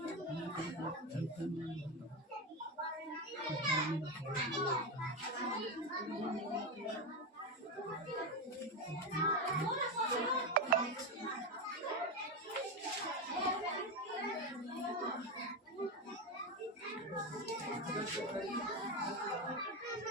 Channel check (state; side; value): normal; both; correlation 0.13